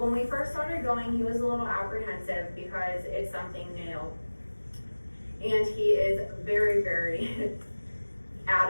we first started going, he was a little apprehensive because it's something new. And he is very, very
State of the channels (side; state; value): both; inverted; correlation -1.00